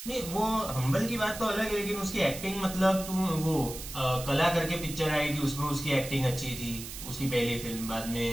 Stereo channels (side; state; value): right; noise; hiss, 10 dB below the sound